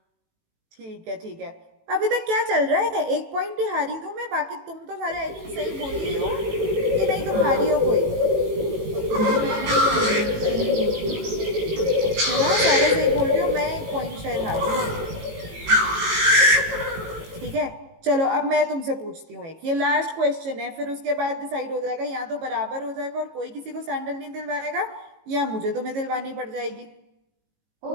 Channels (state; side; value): late; left; 18 ms